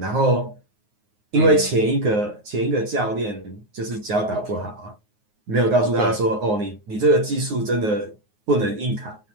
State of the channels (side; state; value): left; late; 9.5 ms